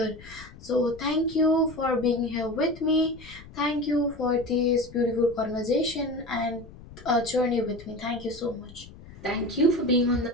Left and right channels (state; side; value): noise; left; rumble, 19 dB below the sound